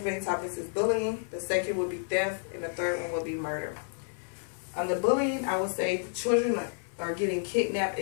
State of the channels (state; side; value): silent; right; 55 dB below the other